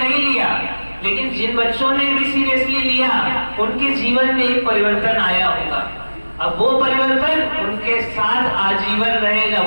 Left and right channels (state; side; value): inverted; both; correlation -1.00